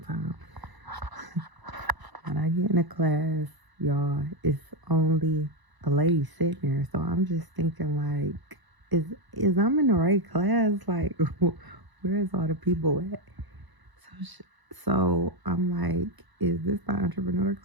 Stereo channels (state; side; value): late; left; 1.0 ms